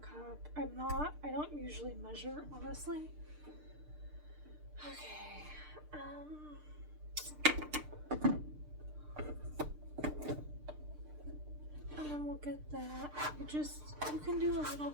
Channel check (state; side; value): late; left; 6.6 ms